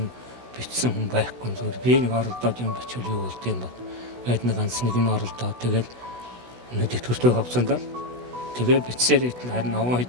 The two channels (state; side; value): late; left; 16 ms